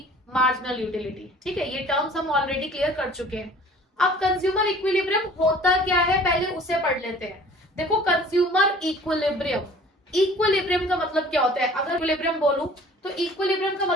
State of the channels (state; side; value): normal; both; correlation 0.49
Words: marginal utility. ठीक है, ये टर्म्स हम ऑलरेडी क्लियर कर चुके हैं। अब कंज्यूमर इक्विलिब्रियम होता क्या है पहले उसे पढ़ लेते हैं। देखो, कंज्यूमर इक्विलिब्रियम, इक्विलिब्रियम का मतलब क्या होता है? अगर इक्विलिब्रियम बोलूं तो इक्विलिब्रियम का